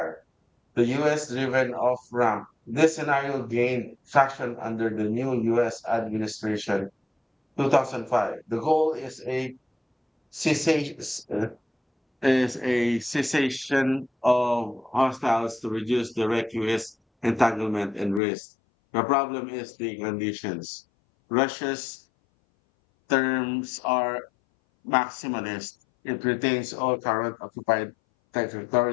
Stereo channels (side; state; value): right; drops out; at 18.2 s